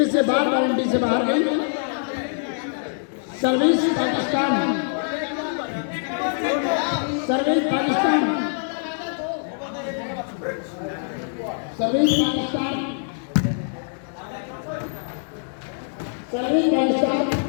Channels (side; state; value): right; silent; 62 dB below the other